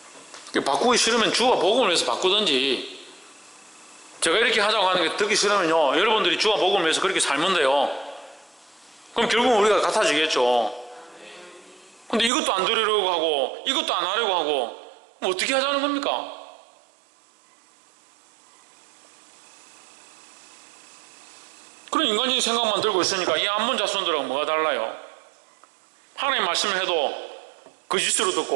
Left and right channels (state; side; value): drops out; left; at 12.3 s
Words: 바꾸기 싫으면 주와 복음을 위해서 바꾸든지, 제가 이렇게 하자고 하는 게 듣기 싫으면요, 여러분들이 주와 복음을 위해서 그렇게 살면 돼요. 그럼 결국은 우리가 같아지겠죠. 근데 이것도 안 들으려고 하고 이것도 안 하려고 하고 어떻게 하자는 겁니까? 그런 인간적인 생각만 들고 있으니까 이 암몬 자손들하고 뭐가 달라요? 하나님 말씀을 해도 거짓으로